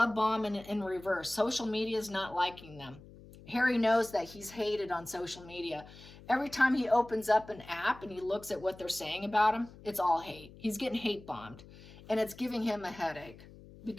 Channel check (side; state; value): left; noise; hum, 19 dB below the sound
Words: bomb in reverse. Social media is not liking them. Harry knows that he's hated on social media. Every time he opens up an app and he looks at what they're saying about him, it's all hate. He's getting hate bombed. And it's giving him a headache